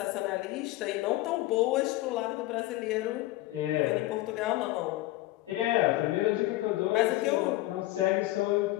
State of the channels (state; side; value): quieter; right; 17.4 dB